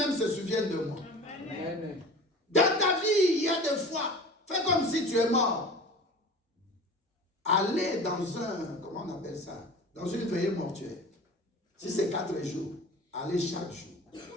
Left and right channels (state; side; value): normal; both; correlation 0.38